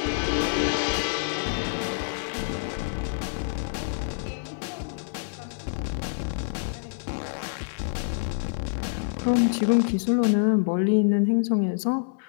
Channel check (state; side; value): silent; right; digital silence